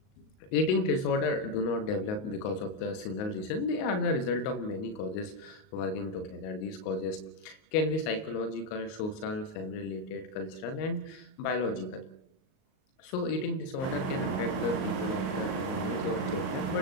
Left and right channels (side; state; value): right; late; 38 ms